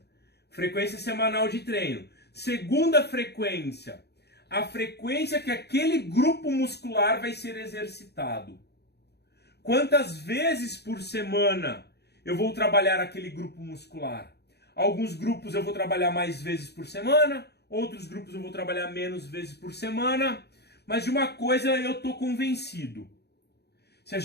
Frequência semanal de treino. Segunda frequência, a frequência que aquele grupo muscular vai ser exercitado. Quantas vezes por semana eu vou trabalhar aquele grupo muscular? Alguns grupos eu vou trabalhar mais vezes por semana, outros grupos eu vou trabalhar menos vezes por semana, mas de uma coisa eu estou convencido. Se a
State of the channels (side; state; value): right; late; 0.48 ms